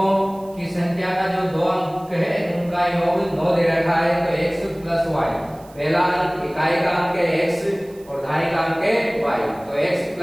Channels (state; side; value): noise; right; hiss, 26 dB below the sound